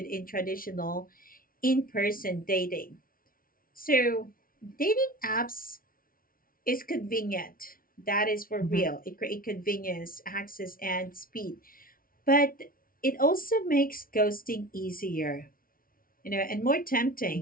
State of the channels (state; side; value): late; right; 0.42 ms